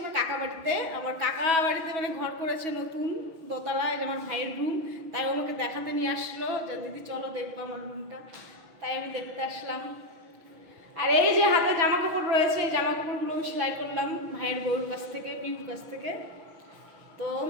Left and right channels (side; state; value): left; late; 6.1 ms